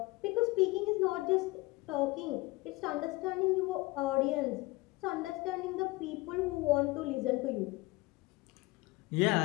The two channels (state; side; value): quieter; right; 21.6 dB